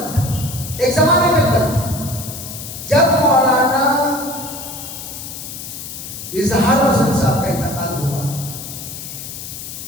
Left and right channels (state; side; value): noise; left; hiss, 10 dB below the sound